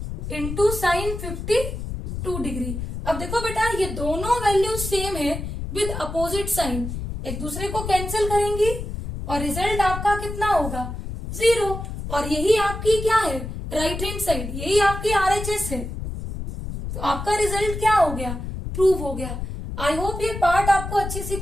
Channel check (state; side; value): noise; left; rumble, 6 dB below the sound